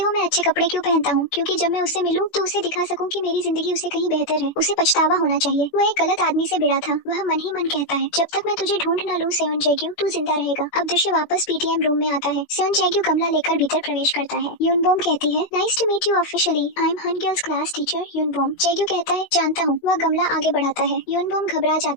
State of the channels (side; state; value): right; late; 17 ms